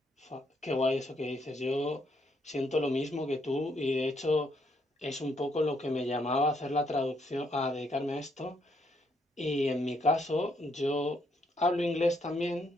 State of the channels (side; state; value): both; normal; correlation 0.73